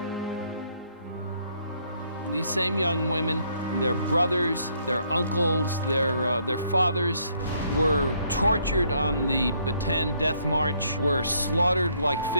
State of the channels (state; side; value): inverted; both; correlation -0.69